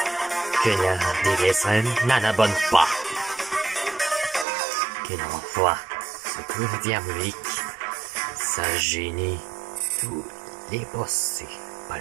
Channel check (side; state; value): left; drops out; at 4.5 s